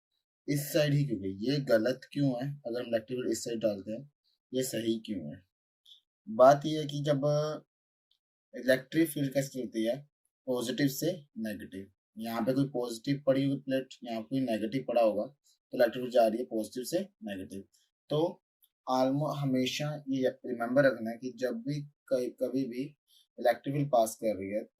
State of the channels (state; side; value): identical; both; correlation 1.00